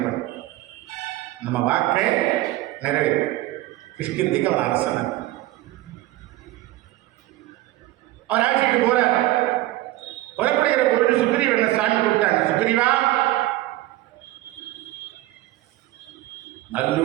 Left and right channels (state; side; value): quieter; left; 16.7 dB